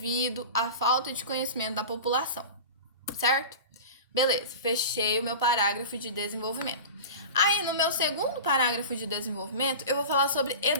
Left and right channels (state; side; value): inverted; both; correlation -0.32